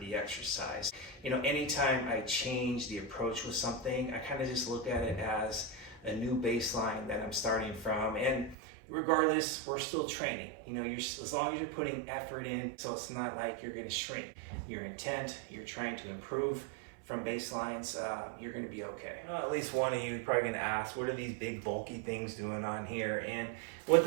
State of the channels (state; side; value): drops out; left; at 8.6 s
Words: exercise. You know, anytime I change the approach with something, I kind of just look at it as a new baseline that I'm starting from. And regardless, we're still training. You know, as long as you're putting effort in, so it's not like you're gonna shrink. Your intent, you're trying to improve from baselines, you're gonna be okay. Well, at least one of you probably gonna ask, what are these big bulky things doing on here? And what